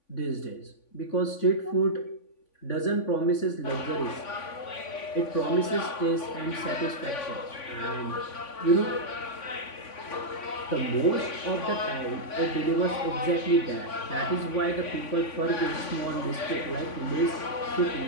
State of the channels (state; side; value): late; right; 3.5 ms